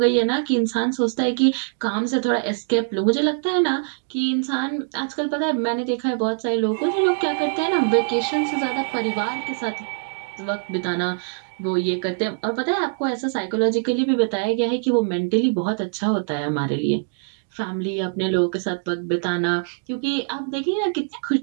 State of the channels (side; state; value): left; silent; digital silence